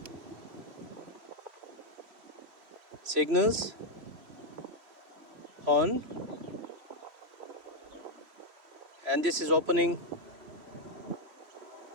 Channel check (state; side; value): late; left; 3.1 ms